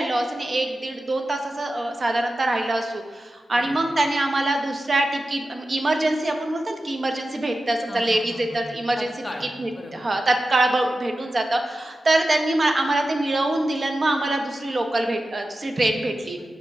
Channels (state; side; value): normal; both; correlation 0.93